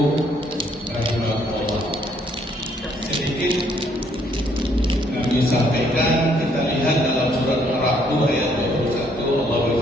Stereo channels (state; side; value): normal; both; correlation 0.67